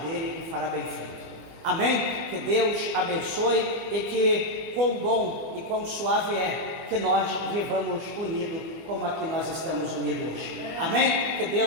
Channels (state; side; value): late; left; 24 ms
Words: e fará bem feito. Amém? Que Deus abençoe e que quão bom e quão suave é que nós vivamos unidos como aqui nós estamos unidos hoje. Amém? Que